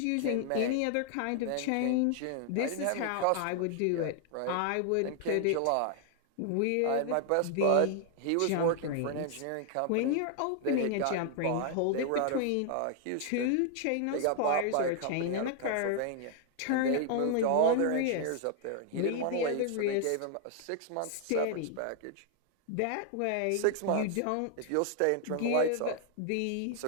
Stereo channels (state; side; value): different; both; correlation 0.00